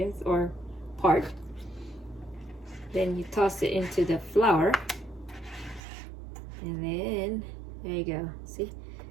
or part. Then you toss it into the flour, and then there you go. See?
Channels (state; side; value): drops out; left; at 5.8 s